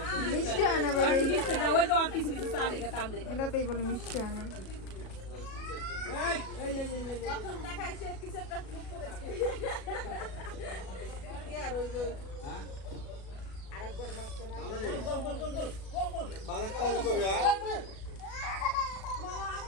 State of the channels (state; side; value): late; right; 37 ms